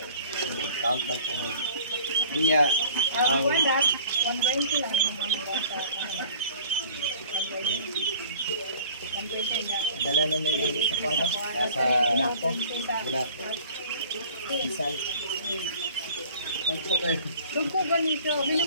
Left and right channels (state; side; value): inverted; both; correlation -0.48